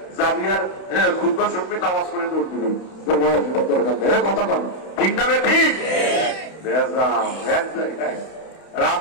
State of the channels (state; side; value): late; right; 31 ms